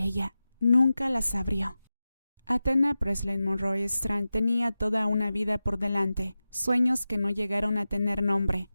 nunca las abrió. Athena Monroe Strand tenía toda una vida por delante, sueños que no llegaron a tener nombre,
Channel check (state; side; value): inverted; both; correlation -0.94